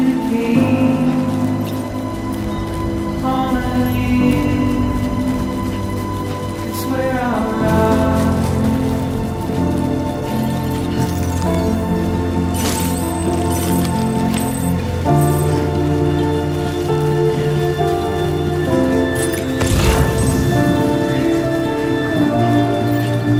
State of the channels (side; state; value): both; identical; correlation 1.00